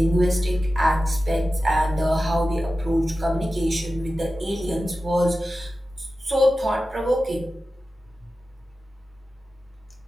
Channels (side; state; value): both; normal; correlation 0.94